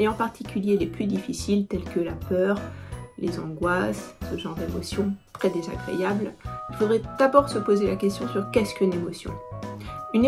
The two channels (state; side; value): identical; both; correlation 1.00